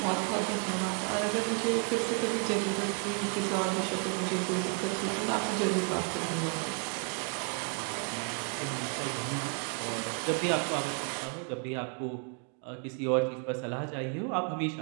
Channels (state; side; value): quieter; left; 38.5 dB